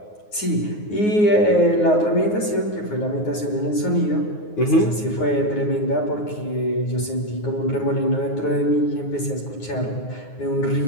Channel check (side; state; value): right; late; 9.5 ms